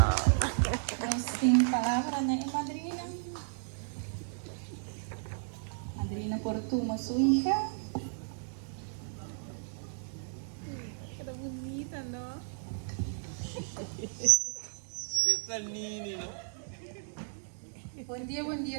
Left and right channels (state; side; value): silent; left; digital silence